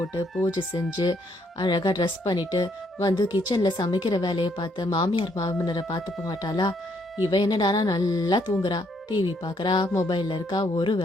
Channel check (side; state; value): both; normal; correlation 0.71